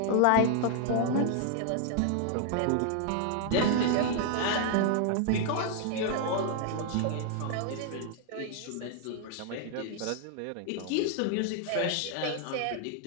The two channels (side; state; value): both; different; correlation 0.00